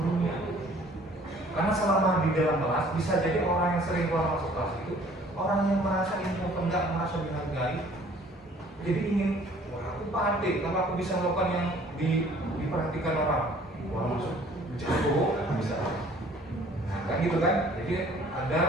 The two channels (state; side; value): normal; both; correlation 0.55